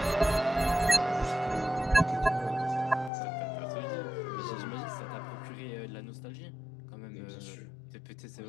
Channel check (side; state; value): right; drops out; at 3.1 s